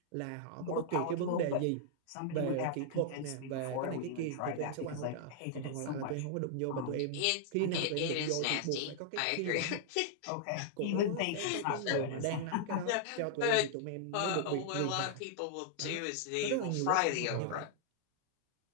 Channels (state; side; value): different; both; correlation -0.01